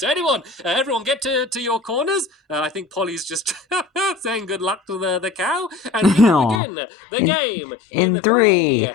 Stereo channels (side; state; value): right; drops out; at 6.6 s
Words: everyone get to your corners. I think Polly's just saying good luck to the cow. And we will begin the game in 3,